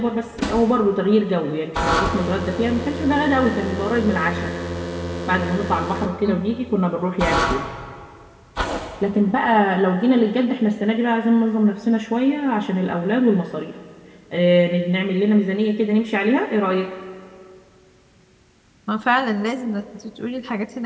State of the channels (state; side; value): identical; both; correlation 1.00